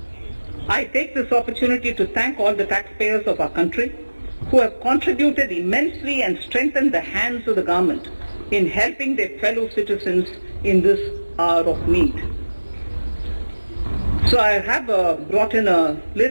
I take this opportunity to thank all the taxpayers of our country who have contributed immensely and strengthened the hands of the government in helping their fellow citizens in this hour of need. So I have brought in a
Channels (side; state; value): both; inverted; correlation -1.00